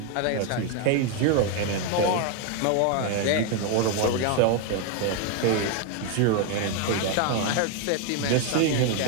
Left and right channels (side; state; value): both; different; correlation 0.01